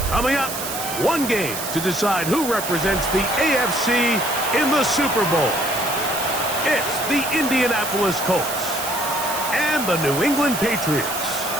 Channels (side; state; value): right; noise; hiss, 6 dB below the sound